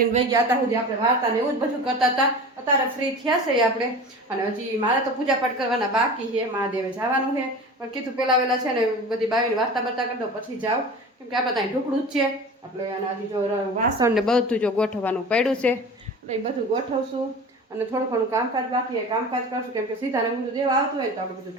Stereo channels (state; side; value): normal; both; correlation 0.35